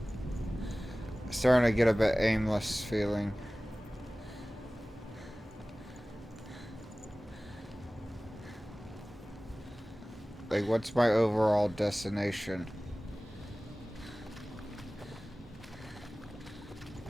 Starting to get a bit aimless feeling. Like, what's my overall destination?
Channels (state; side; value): normal; both; correlation 0.98